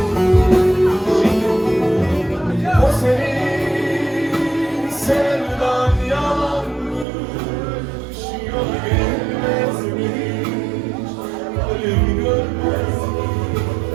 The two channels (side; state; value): left; drops out; at 7.1 s